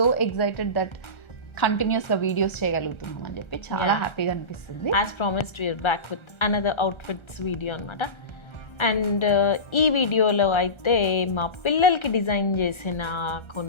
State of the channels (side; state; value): right; late; 1.3 ms